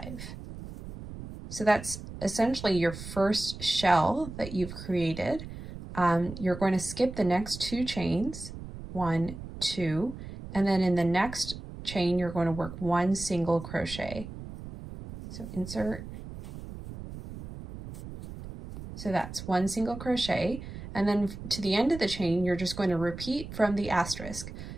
So that's essentially your first shell that you've created. You're going to skip the next 2 chains, 1, 2, and then in the next chain you're going to work 1 single crochet. So insert. So that's 1 single crochet, and then to the end of the chain you're just going to repeat from the asterisk.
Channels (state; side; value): noise; right; rumble, 11 dB below the sound